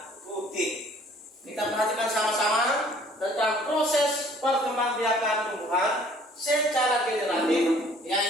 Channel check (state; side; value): normal; both; correlation 0.56